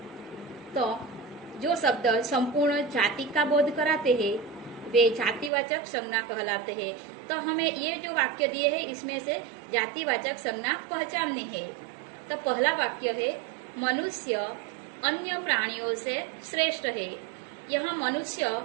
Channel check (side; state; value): left; drops out; at 5.5 s